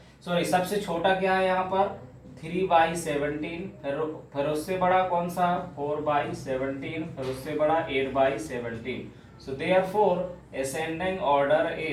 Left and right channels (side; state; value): both; identical; correlation 1.00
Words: सॉरी सबसे छोटा क्या है यहाँ पर 3/17, फिर उससे बड़ा कौन सा 4/17, फिर उससे बड़ा 8/17। So therefore ascending order